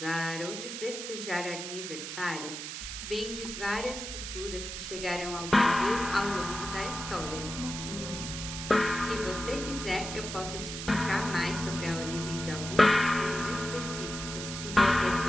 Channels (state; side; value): noise; right; hiss, 7 dB below the sound